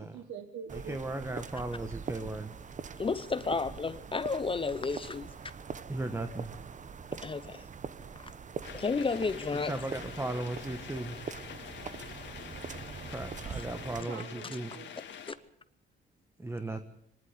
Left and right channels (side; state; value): both; normal; correlation 0.60